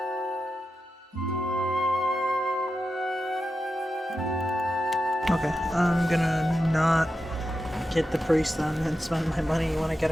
Okay, I'm gonna not get the priest then and spend my money when I get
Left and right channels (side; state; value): both; normal; correlation 0.90